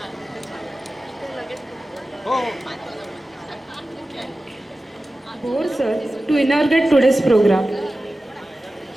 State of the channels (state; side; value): normal; both; correlation 0.95